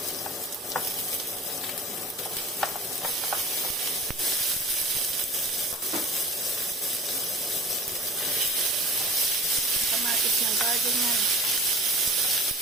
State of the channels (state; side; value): normal; both; correlation 0.41